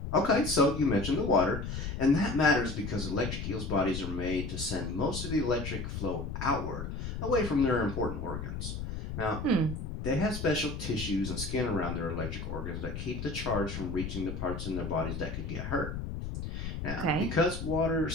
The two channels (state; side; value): noise; left; rumble, 5 dB below the sound